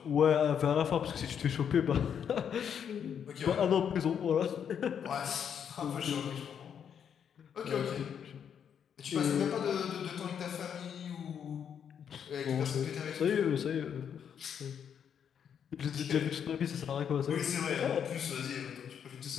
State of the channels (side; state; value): right; quieter; 8.1 dB